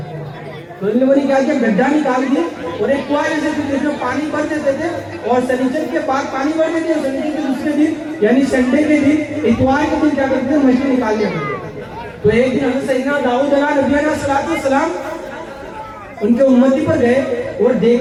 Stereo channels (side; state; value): both; identical; correlation 1.00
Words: تو ان لوگوں نے کیا کیا گڈھا نکال دیا اور ایک کنواں جیسے جس میں پانی بھر دیتے تھے اور سنیچر کے بعد پانی بھر دیتے اور سنیچر کے دوسرے دن یعنی سنڈے کے دن اتوار کے دن کیا کرتے تھے مچھلی نکال دیا کرتے تھے. تو ایک دن حضرت سیدنا داؤد علیہ نبی علیہ السلام ان کے امتی پر گئے اور